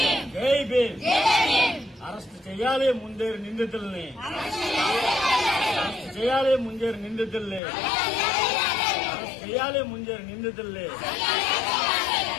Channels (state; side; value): drops out; right; at 7.6 s